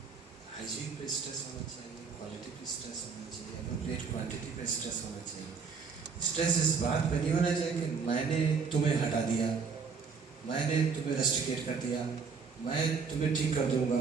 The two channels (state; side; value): quieter; left; 5.5 dB